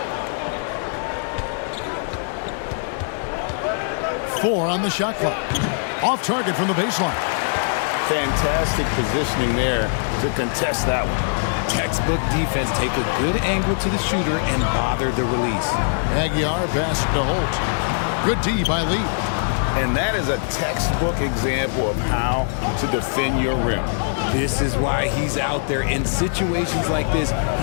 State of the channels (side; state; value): right; silent; digital silence